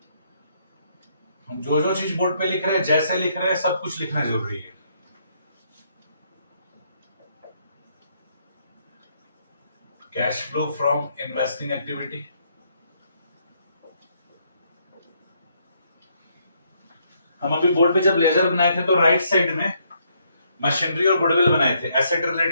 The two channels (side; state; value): both; inverted; correlation -0.72